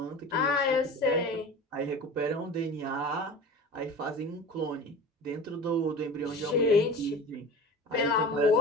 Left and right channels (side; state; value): both; normal; correlation 0.36